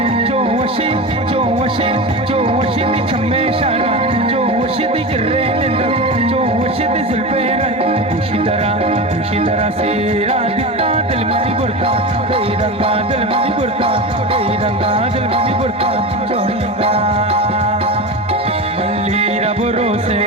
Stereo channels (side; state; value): both; normal; correlation 0.25